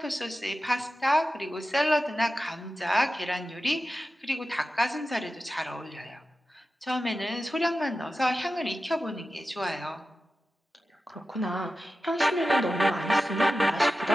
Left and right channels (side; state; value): both; normal; correlation 0.93